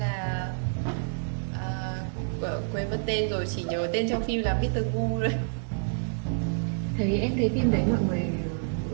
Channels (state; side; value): silent; left; digital silence